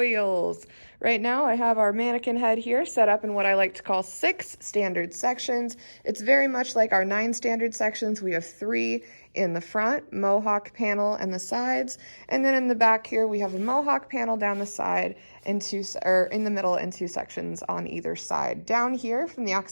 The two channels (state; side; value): inverted; both; correlation -1.00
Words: Right now I have our mannequin head here set up in what I like to call 6 standard sections. It's very much like our 9 standard sections. We have 3 in the front, mohawk panel and the sides, and then in the back here we have a mohawk panel down the side and in the middle and 2 sections on either side. Down here from the